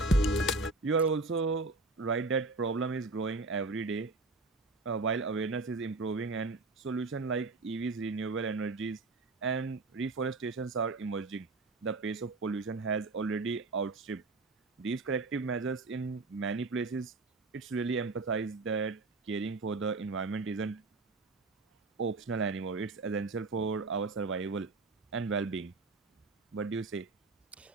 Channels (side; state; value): left; quieter; 3.4 dB